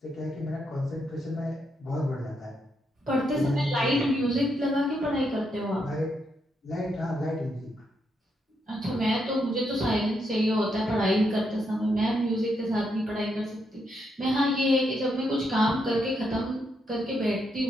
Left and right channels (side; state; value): both; normal; correlation 0.79